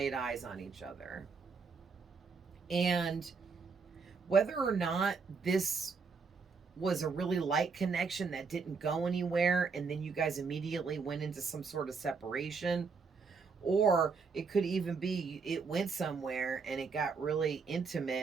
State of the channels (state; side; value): quieter; left; 5.0 dB